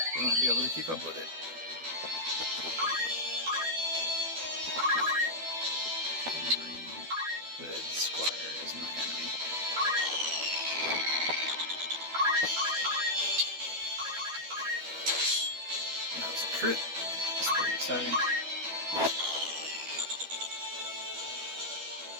You won't be able to keep up with it. Hood Squire is my enemy. That was a crit. That's pretty exciting.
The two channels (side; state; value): left; late; 12 ms